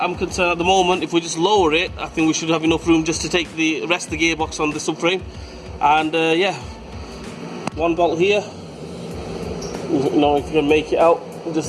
concerned at the moment, if we just lower it, I think we should have enough room just to take the rest of the gearbox on the subframe. And yeah, one bolt here. Now if you can make it out,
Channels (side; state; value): both; identical; correlation 1.00